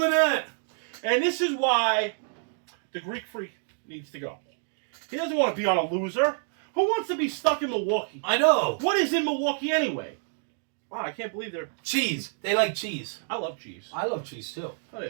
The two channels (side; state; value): left; silent; digital silence